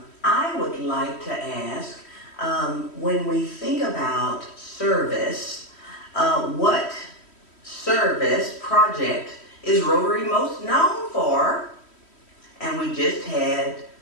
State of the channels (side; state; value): right; late; 3.1 ms